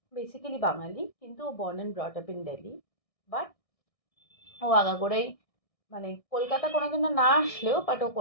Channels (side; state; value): right; late; 1.6 ms